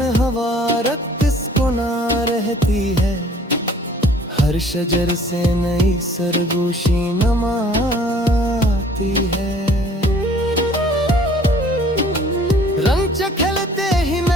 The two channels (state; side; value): normal; both; correlation 0.54